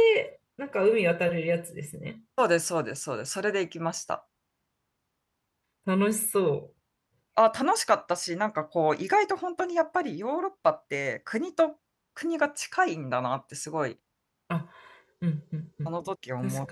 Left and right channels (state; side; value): identical; both; correlation 1.00